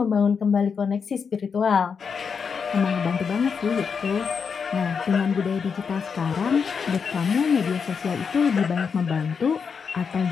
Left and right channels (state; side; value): quieter; right; 6.0 dB